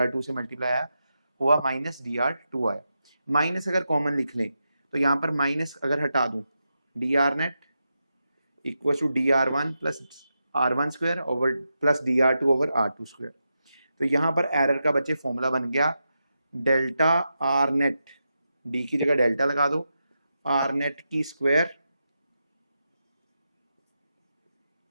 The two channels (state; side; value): inverted; both; correlation -0.88